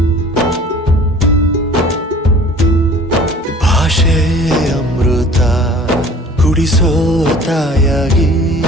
ಭಾಷೆ ಅಮೃತ ಕುಡಿಸೋ ತಾಯಾಗಿ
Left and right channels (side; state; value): both; normal; correlation 0.48